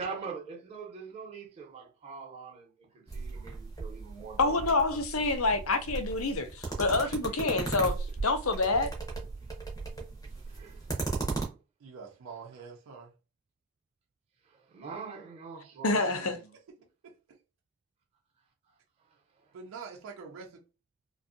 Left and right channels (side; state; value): both; normal; correlation -0.17